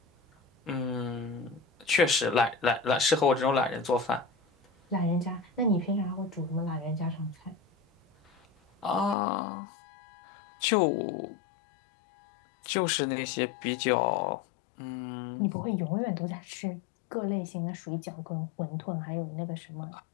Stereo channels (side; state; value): right; drops out; at 9.2 s